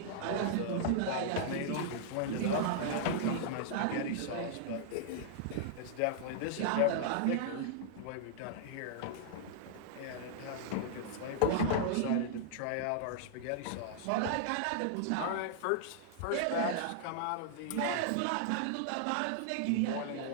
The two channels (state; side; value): different; both; correlation -0.01